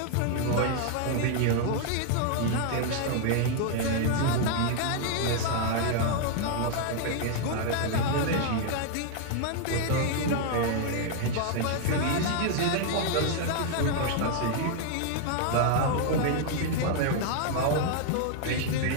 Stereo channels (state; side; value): different; both; correlation 0.00